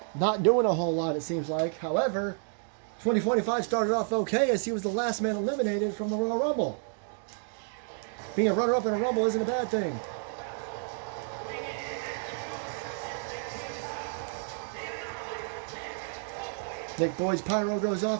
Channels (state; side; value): silent; left; 58 dB below the other